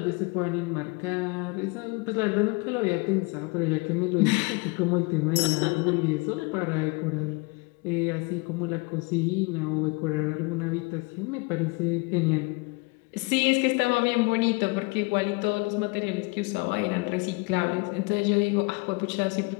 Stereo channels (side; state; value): right; quieter; 27.2 dB